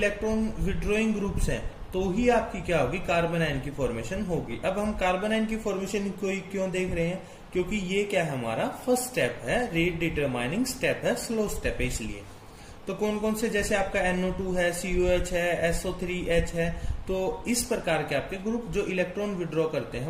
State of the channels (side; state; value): both; identical; correlation 1.00